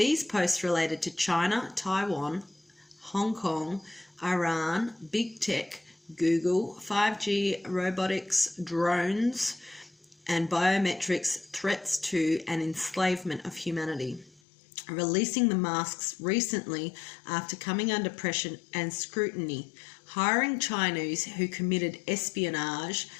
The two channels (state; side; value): drops out; right; at 14.4 s